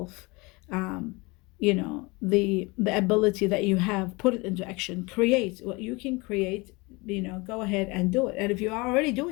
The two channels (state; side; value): quieter; right; 25.7 dB